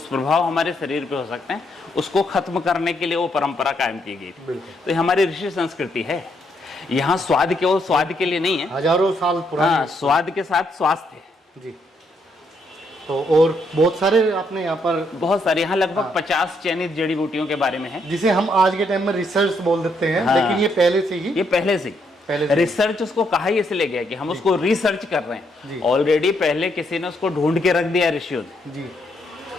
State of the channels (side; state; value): both; normal; correlation 0.75